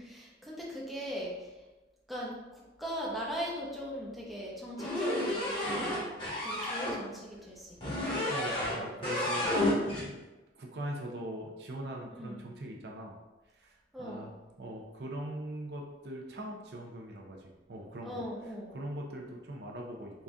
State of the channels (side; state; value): both; normal; correlation 0.40